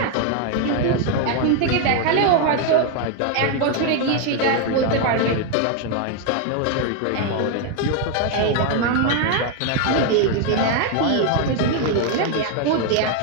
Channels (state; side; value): different; both; correlation 0.01